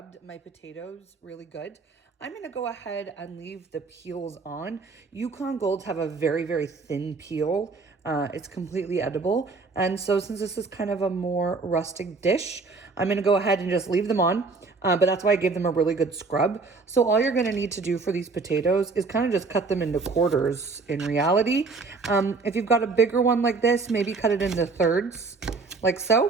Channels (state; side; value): quieter; left; 4.2 dB